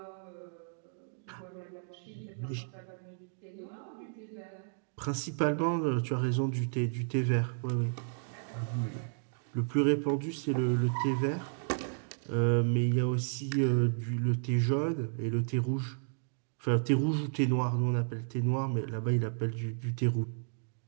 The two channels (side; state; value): left; silent; digital silence